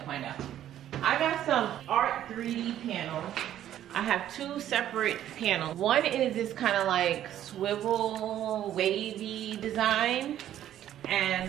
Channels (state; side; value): quieter; left; 11.6 dB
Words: find out. I got some art 3D panels. I have two separate panels. One is this kind of like swivel wavy design,